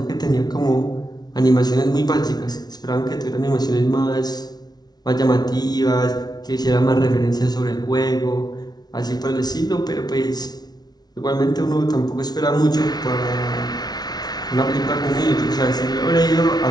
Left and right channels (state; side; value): late; right; 0.19 ms